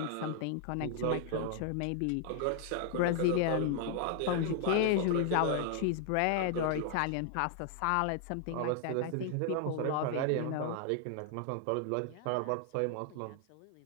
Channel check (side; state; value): both; different; correlation 0.00